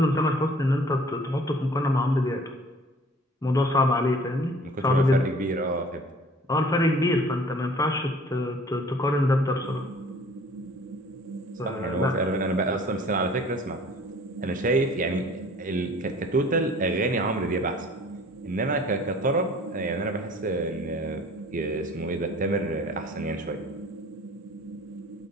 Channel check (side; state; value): both; normal; correlation 0.50